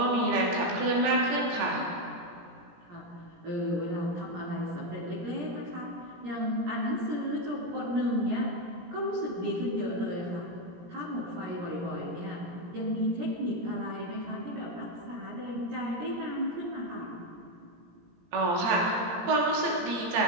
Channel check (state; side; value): late; left; 17 ms